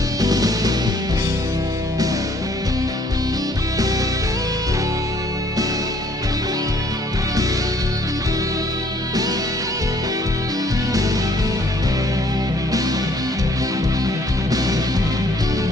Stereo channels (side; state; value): both; normal; correlation 0.61